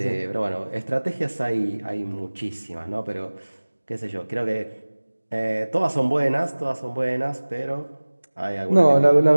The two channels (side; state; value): both; inverted; correlation -1.00